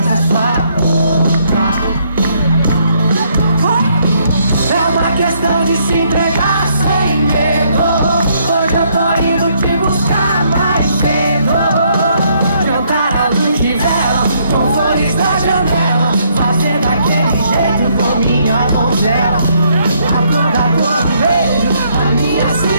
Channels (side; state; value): both; inverted; correlation -0.70